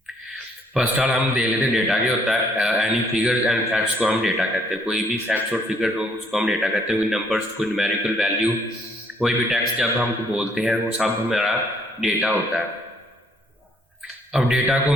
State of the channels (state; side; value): normal; both; correlation 0.66